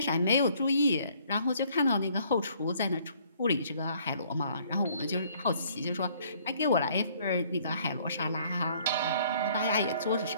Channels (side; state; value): both; inverted; correlation -0.61